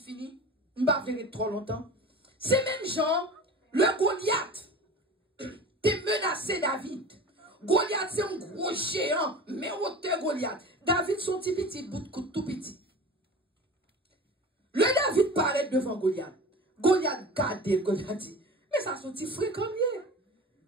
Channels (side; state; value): both; normal; correlation 0.35